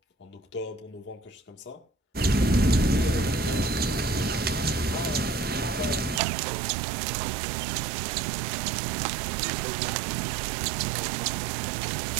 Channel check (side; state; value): left; drops out; at 6.2 s